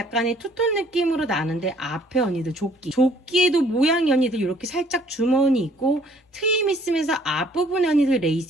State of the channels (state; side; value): normal; both; correlation 0.60